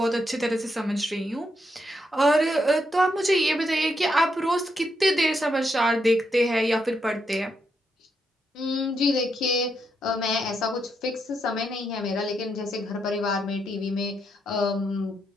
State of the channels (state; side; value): normal; both; correlation 0.80